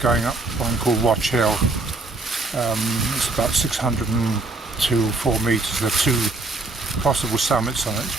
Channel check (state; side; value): quieter; left; 3.2 dB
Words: up one called Watch Hill. It's about 604 metres. There are two possible summits on